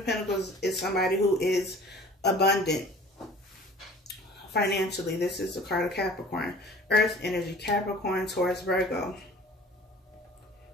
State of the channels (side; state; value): both; normal; correlation 0.46